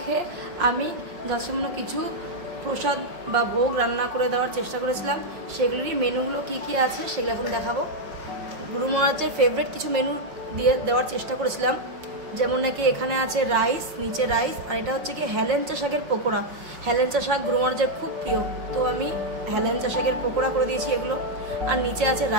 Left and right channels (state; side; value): late; left; 5.3 ms